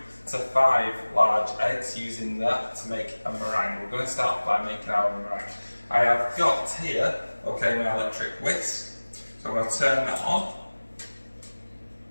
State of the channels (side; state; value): both; inverted; correlation -1.00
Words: to 5 large eggs, using that to make a meringue. We're going to start by making our meringue. I have got here, okay, my electric whisk. So I'm going to turn that on.